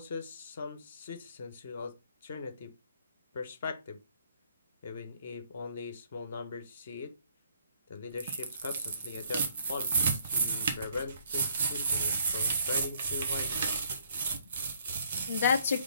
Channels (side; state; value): both; inverted; correlation -0.63